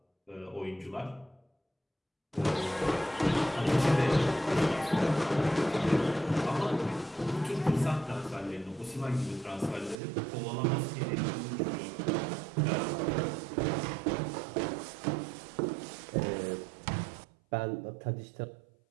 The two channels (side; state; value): left; drops out; at 10.0 s